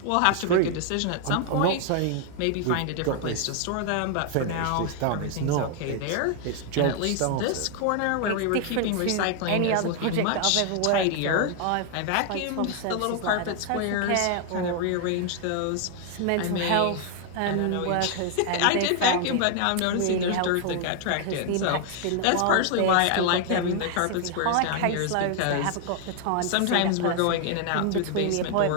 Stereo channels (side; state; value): both; different; correlation 0.00